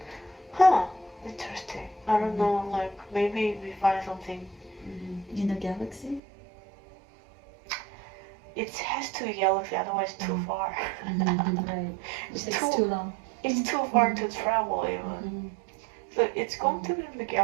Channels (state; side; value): drops out; left; at 6.2 s